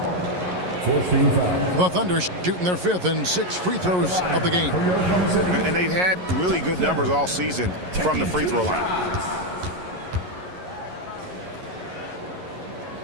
The Thunder shooting their 5th and 6th free throws of the game. And they've had really good numbers all season from the free throw line.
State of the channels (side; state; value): left; late; 11 ms